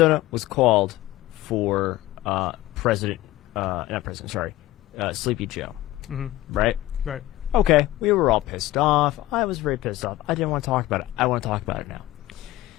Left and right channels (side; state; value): right; quieter; 16.2 dB